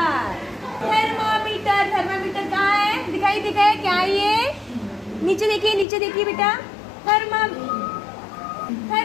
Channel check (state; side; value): drops out; right; at 5.9 s